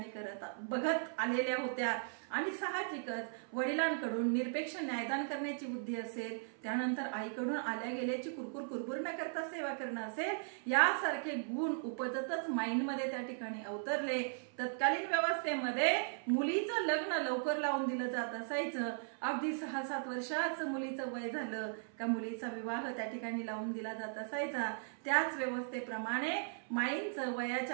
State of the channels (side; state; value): left; silent; 53 dB below the other